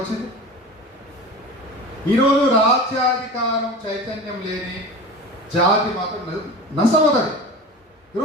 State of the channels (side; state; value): both; normal; correlation 0.33